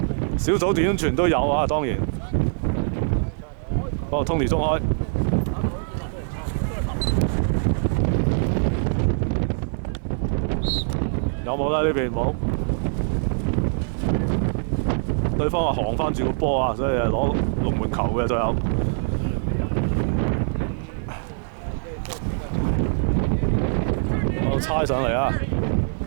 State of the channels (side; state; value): left; silent; digital silence